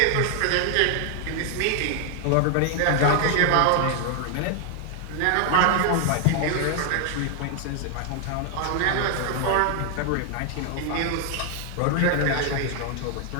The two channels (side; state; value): both; different; correlation 0.00